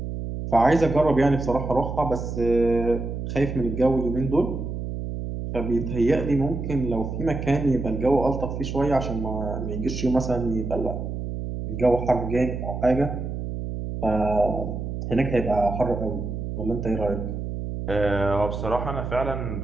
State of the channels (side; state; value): right; noise; hum, 5 dB below the sound